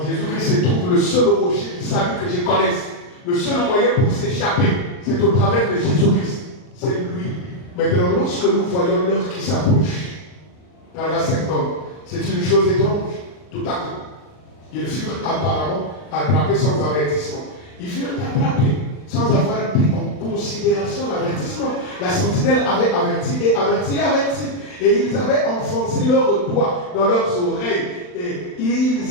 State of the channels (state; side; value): late; right; 39 ms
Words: se trouve le seul rocher du salut que je connaisse. Le seul moyen pour s'échapper, c'est au travers de Jésus-Christ. C'est lui. Maintenant, lorsque nous voyons l'heure qui s'approche, paragraphe 50, c'est une chose étrange. Tout à coup, ils furent apparemment attrapés sans avertissement. Ils furent attrapés sans avoir pris en considération l'avertissement. La sentinelle avait averti et averti et averti. Et ils avaient enfoncé leurs doigts dans leurs oreilles. Et